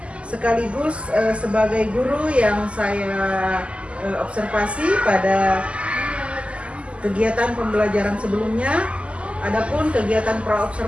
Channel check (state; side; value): late; left; 0.057 ms